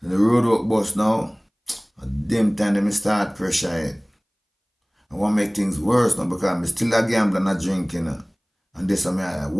And the road work bus now, at them time they start pressure it. I want to make things worse now because I'm still a gambler and a drinking. And this I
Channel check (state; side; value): identical; both; correlation 1.00